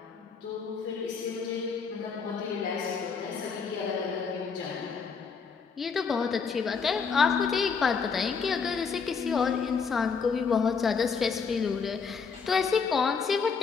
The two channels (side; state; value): right; quieter; 5.6 dB